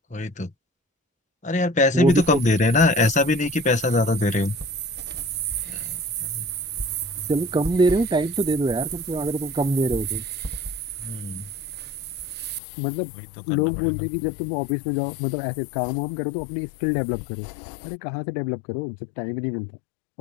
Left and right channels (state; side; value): drops out; right; at 12.6 s